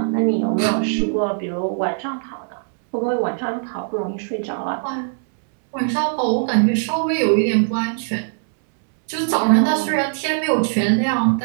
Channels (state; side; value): silent; left; 65 dB below the other